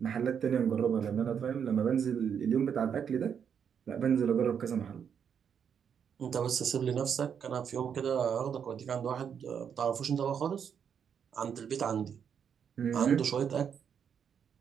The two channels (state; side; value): quieter; left; 7.6 dB